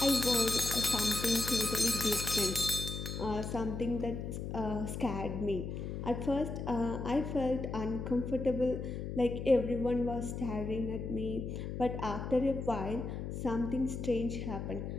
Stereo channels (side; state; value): left; noise; hum, 5 dB below the sound